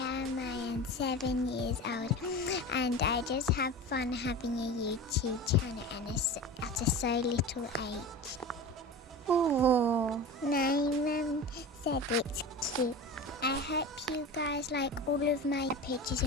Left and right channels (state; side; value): normal; both; correlation 0.31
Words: am 7 years old, and I just have fun having a YouTube channel and at a so little age. Oh, my mum said it's cute. I hope you guys like all of my pictures